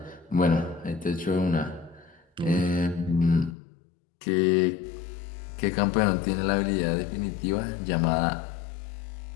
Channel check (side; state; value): right; drops out; at 3.6 s